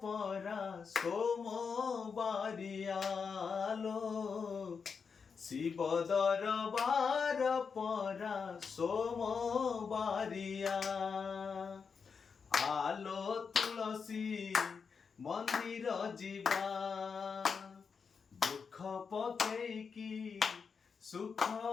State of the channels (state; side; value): quieter; right; 5.7 dB